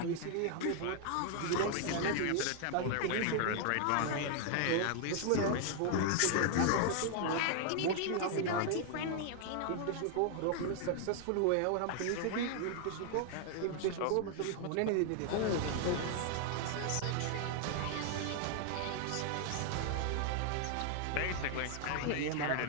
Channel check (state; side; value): different; both; correlation 0.00